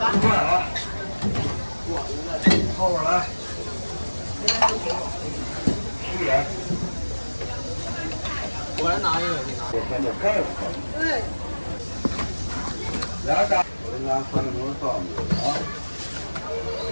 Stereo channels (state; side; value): inverted; both; correlation -1.00